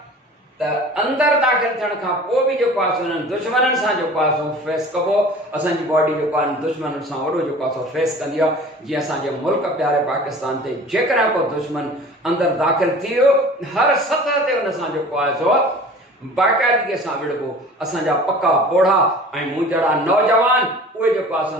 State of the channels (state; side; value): normal; both; correlation 0.43